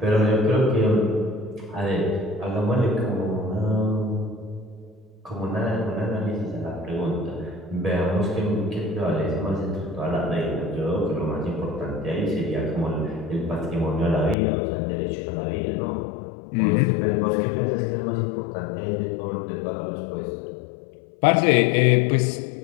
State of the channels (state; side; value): drops out; right; at 14.4 s